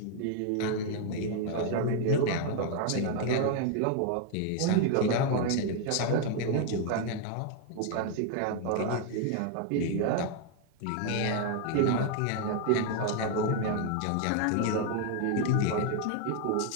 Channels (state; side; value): different; both; correlation 0.00